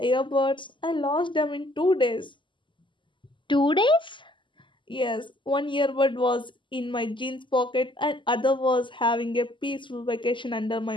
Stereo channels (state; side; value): late; right; 0.24 ms